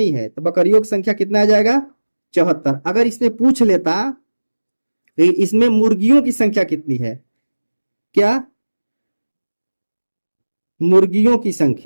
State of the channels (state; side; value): inverted; both; correlation -1.00